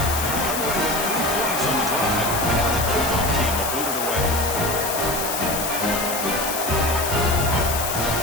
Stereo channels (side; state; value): left; noise; hiss, 4 dB below the sound